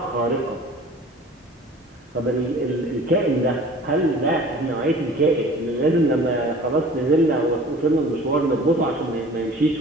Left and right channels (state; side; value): normal; both; correlation 0.45